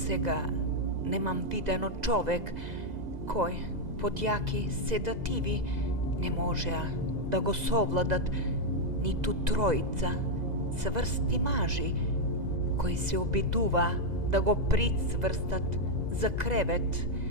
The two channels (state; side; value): late; left; 2.0 ms